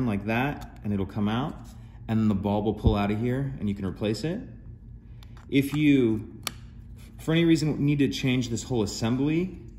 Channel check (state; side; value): identical; both; correlation 1.00